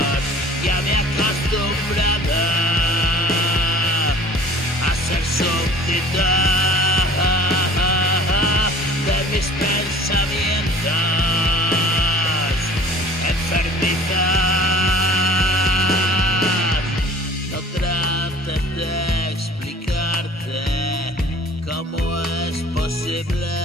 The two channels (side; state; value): both; normal; correlation 0.47